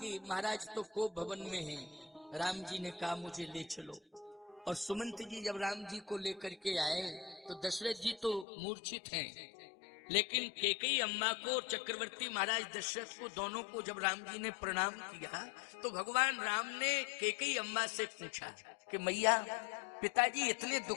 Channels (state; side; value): drops out; right; at 8.5 s